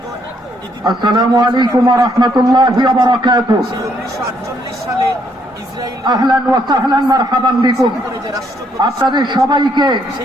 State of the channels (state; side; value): normal; both; correlation 0.71